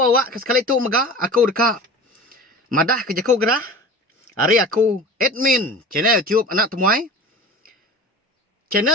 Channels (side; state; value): both; normal; correlation 0.36